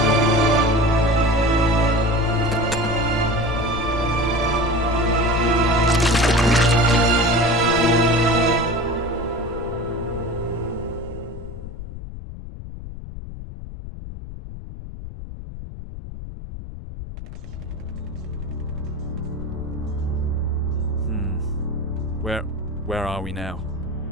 Where are we now?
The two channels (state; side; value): noise; left; rumble, 11 dB below the sound